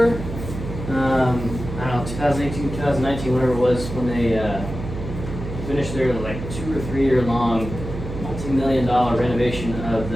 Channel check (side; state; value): right; noise; hum, 8 dB below the sound